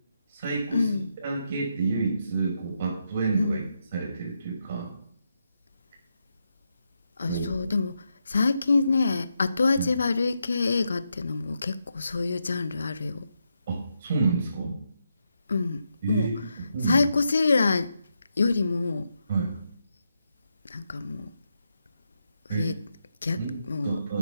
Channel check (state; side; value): inverted; both; correlation -0.83